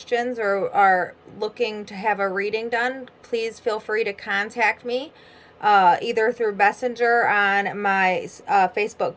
or are looking to have a reading done, please feel free to contact me. Either through Messenger on my Facebook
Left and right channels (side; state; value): both; identical; correlation 1.00